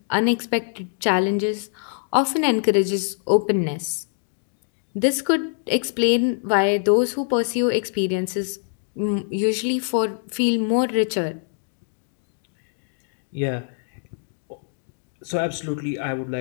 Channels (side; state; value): right; silent; digital silence